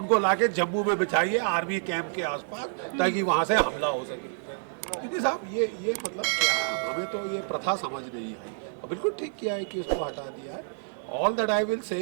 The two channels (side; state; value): left; silent; digital silence